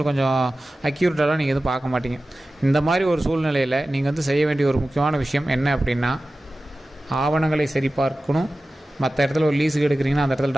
கொஞ்சம் அக்யூரேட்டாலாம் நீங்கள் எதுவும் பார்க்க மாட்டீங்க. இந்த மாதிரி ஒரு சூழ்நிலையில் நீங்கள் வந்து செய்ய வேண்டிய ஒரு முக்கியமான விஷயம் என்ன அப்படின்னா, ஆவணங்களை சரிபார்க்கணும். மற்ற இடத்துல ஒரு லீஸுக்கு எடுக்கிறீங்கன்னா அந்த இடத்துல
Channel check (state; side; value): normal; both; correlation 0.95